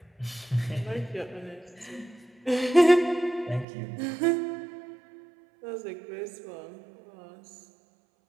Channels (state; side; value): drops out; left; at 3.7 s